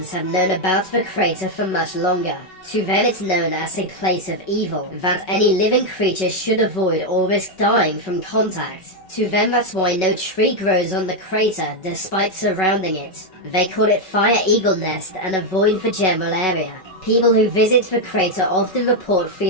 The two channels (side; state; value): right; late; 5.3 ms